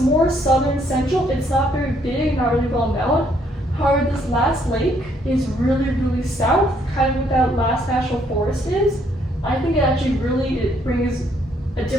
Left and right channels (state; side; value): normal; both; correlation 0.69